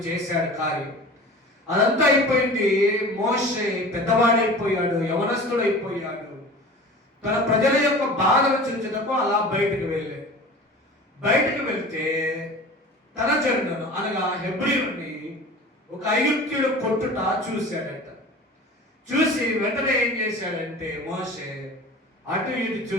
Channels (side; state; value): both; normal; correlation 0.38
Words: చేశాడు కార్యం. అదంతా అయిపోయింది. మోషే పెద్దవాడైపోయాడు, యవనస్తుడైపోయాడు. తన ప్రజల యొక్క బాధను చూచుటకు అలా బయటకు వెళ్ళాడు. బయటకు వెళ్తే తన జనులను అనగా హెబ్రీయుని ఒక ఐగుప్తీయుడు కొట్టుట చూశాడట. చూసి వెంటనే ఏం చేశాడంటే మోషే అటు ఇటు